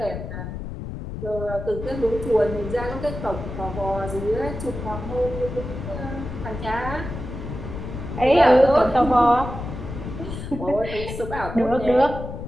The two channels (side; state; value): left; noise; rumble, 8 dB below the sound